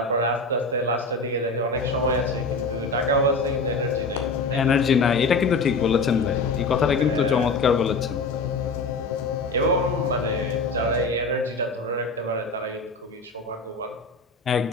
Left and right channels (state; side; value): quieter; right; 3.4 dB